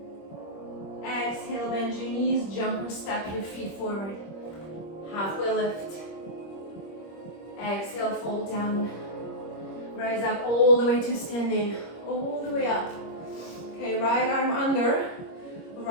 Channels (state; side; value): late; right; 25 ms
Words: Exhale, bend your knees, jump or step your feet forward. Halfway lift. Exhale, fold down. Rise up all the way to standing, all the way up. Okay, right arm under,